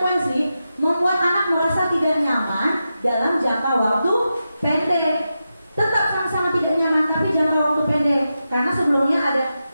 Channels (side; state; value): both; inverted; correlation -0.90